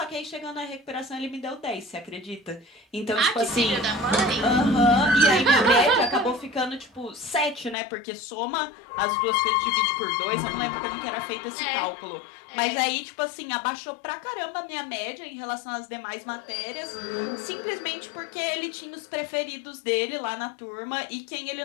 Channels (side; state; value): right; drops out; at 7.8 s